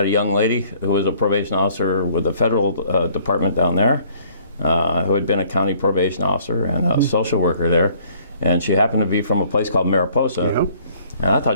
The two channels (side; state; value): both; inverted; correlation -0.59